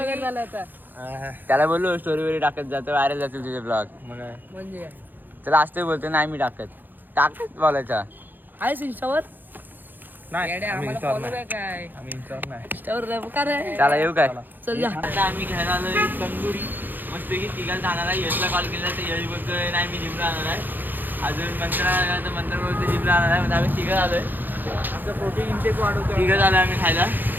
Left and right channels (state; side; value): late; left; 0.089 ms